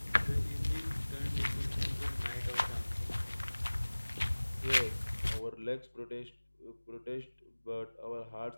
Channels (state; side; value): inverted; both; correlation -1.00